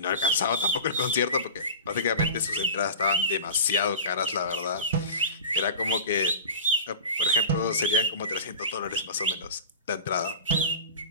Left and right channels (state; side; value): inverted; both; correlation -0.32